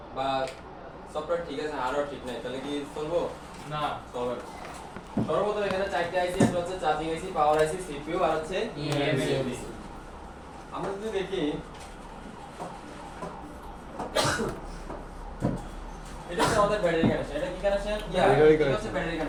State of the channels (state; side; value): identical; both; correlation 1.00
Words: বা সফটওয়্যার ঠিক আছে হার্ডওয়্যার ঠিক নাই, তাহলে কি চলবো? না। চলবে না। সর্বপ্রথম এখানে চারটি আইসি, একটা হচ্ছে চার্জিং আইসি, পাওয়ার আইসি, সিপিইউ আর হচ্ছে ইএমসি। আমরা যদি দেখি এটা হচ্ছে আমাদের ব্যাটারি কানেকশন। এটা কি কানেকশন? এটা হচ্ছে ব্যাটারি